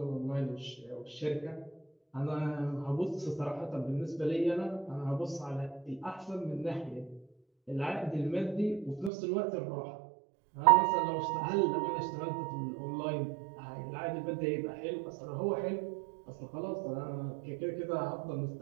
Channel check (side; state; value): left; drops out; at 9.1 s